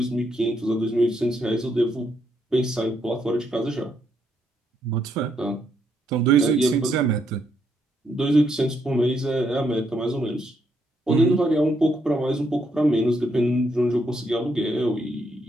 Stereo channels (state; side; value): normal; both; correlation 0.76